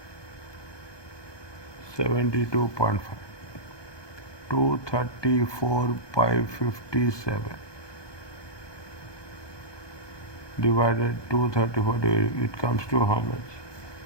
72.5. 234 by 57 divided 234, it comes to how much?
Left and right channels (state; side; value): late; right; 1.2 ms